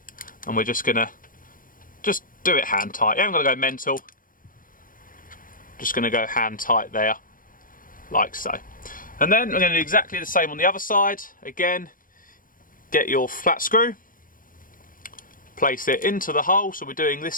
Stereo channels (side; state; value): right; late; 0.40 ms